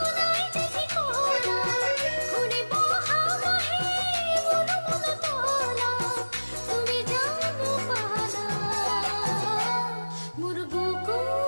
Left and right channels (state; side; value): inverted; both; correlation -1.00